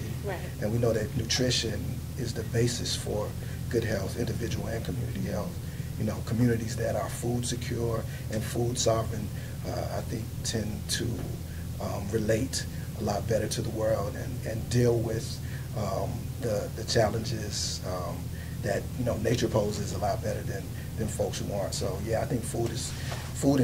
Right. And we know that nutrition is the basis for good health, individual and community health. Communities that are food secure and food sovereign, I think, tend to relate a lot better to the world and deal with the challenges that nature poses a lot better than folks who aren't. So yeah, I think food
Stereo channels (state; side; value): identical; both; correlation 1.00